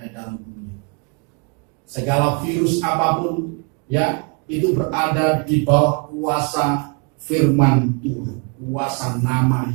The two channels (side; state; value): left; quieter; 36.3 dB